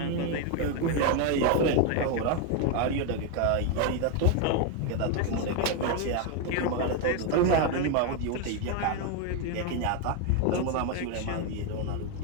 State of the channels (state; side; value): different; both; correlation 0.01